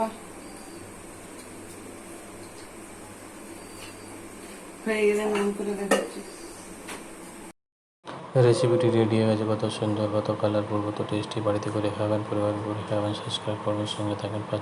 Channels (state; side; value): identical; both; correlation 1.00